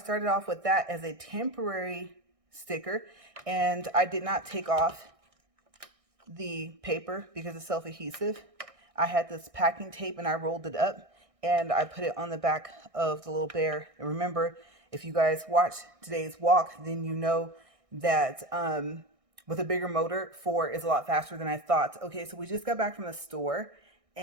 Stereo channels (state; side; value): late; left; 1.6 ms